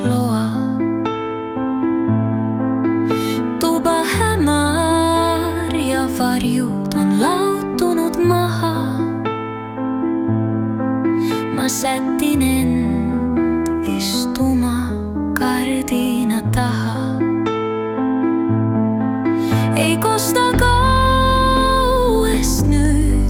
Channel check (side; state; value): both; identical; correlation 1.00